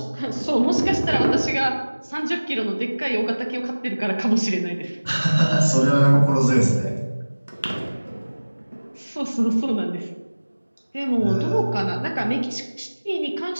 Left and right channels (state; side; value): inverted; both; correlation -1.00